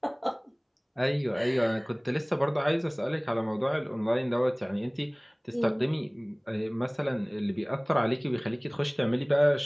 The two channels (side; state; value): both; identical; correlation 1.00